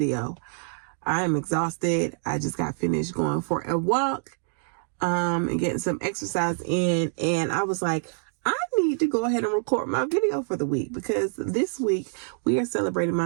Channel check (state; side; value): silent; left; digital silence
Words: I am exhausted. I just got finished going for a walk and getting some exercise in, and I was like, I need to go ahead and record my video for the week because this week we are celebrating